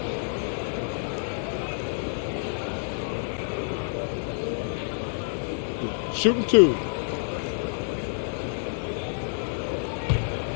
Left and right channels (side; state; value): right; silent; digital silence